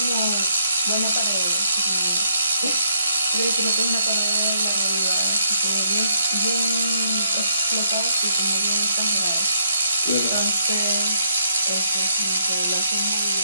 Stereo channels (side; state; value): both; inverted; correlation -0.73